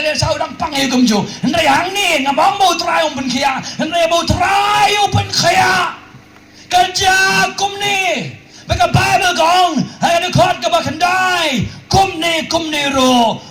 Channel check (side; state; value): both; identical; correlation 1.00